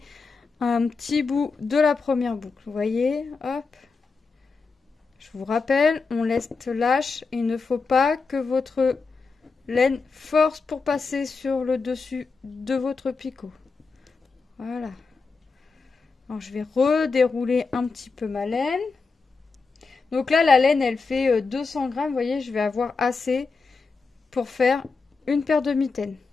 un petit bout de la première boucle. Vous voyez, hop. Je vous rappelle, on laisse lâche. Il ne faut pas que votre laine force pour passer sur le dessus de votre picot. Voilà. Alors, je vais redérouler un petit peu ma laine. Donc là, la laine, elle fait 200 grammes. Vous voyez, je vais avoir assez pour faire une paire de mitaines.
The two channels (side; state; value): right; quieter; 4.5 dB